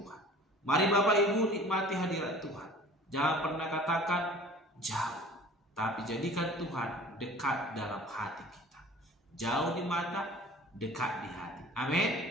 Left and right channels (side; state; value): both; normal; correlation 0.46